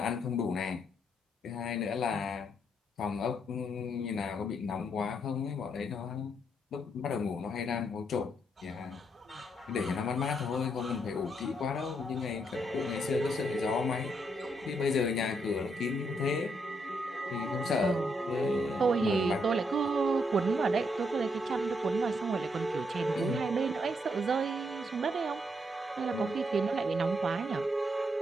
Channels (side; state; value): both; normal; correlation 0.76